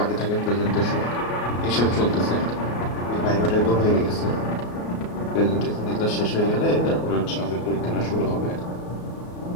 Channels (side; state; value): right; late; 34 ms